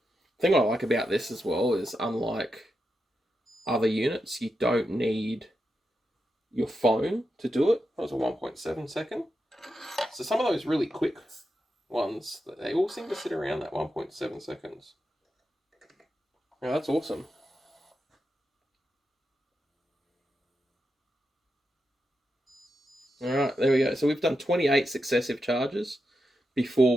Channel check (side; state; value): both; normal; correlation 0.87